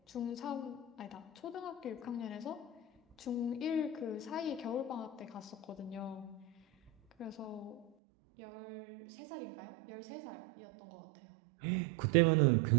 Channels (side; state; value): left; drops out; at 7.9 s